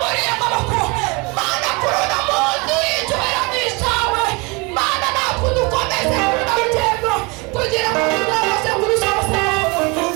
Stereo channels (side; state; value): left; quieter; 28.0 dB